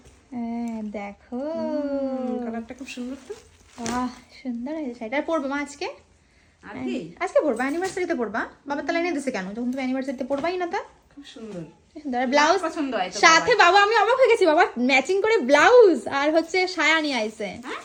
হ্যাঁ দেখো কালারটা খুব সুন্দর তো। বাহ সুন্দর হয়েছে শাড়িটা। পরবে মা আজকে? আর কি আজকে পরবা? অ্যানিভার্সারিতে পরবা? বাবার তাহলে এনে দিছে কেন, যখন তুমি অ্যানিভার্সারিতে পরবাই না? তা খুব সুন্দর সুন্দর ব্লাউজ পছন্দ হয় তো সাথে। বাবা আমি অবাক হয়ে গেছি, বাবা ম্যাচিং করে ব্লাউজ আর হচ্ছে সায়া নিয়ে আইছে।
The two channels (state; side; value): identical; both; correlation 1.00